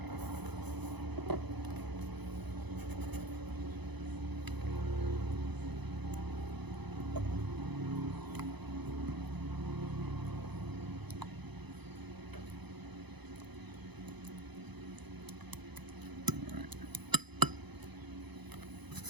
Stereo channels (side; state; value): left; late; 0.99 ms